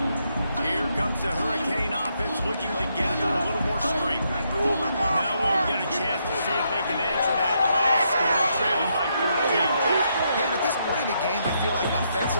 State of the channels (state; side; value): inverted; both; correlation -0.77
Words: leaves the Hurricane offense looking to gather a little more strength. Now we'll get a chance to see if they can answer that last score, trailing by 14. Yeah, and at this point in the game, I feel like